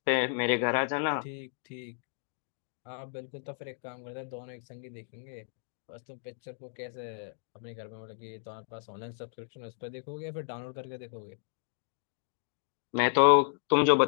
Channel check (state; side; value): silent; right; digital silence